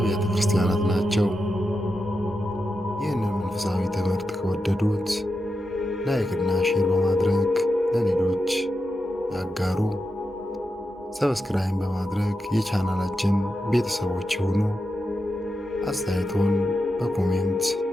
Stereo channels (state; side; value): normal; both; correlation 0.88